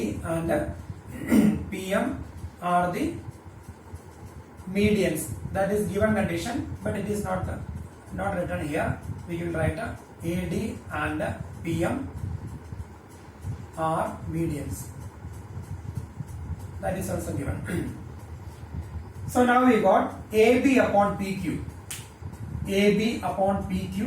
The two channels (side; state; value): both; identical; correlation 1.00